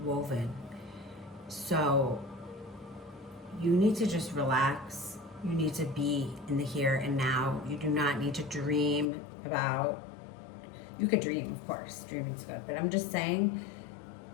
woven. So you need to just relax. You need to be in the here and now. You do not need to dream about, you could dream, of course, dreaming's good, but I'm just saying,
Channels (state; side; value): drops out; right; at 9.1 s